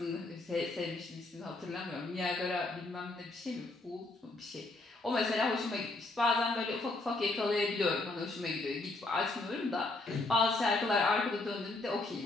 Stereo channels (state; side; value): quieter; right; 3.1 dB